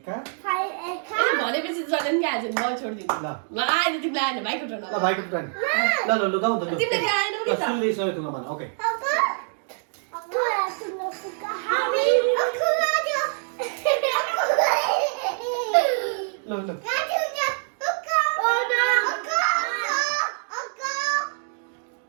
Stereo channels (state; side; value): silent; left; 59 dB below the other